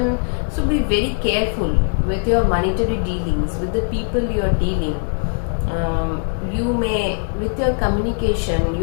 be very careful with your monetary dealings, with the people you are dealing. With your communication,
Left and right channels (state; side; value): silent; right; 66 dB below the other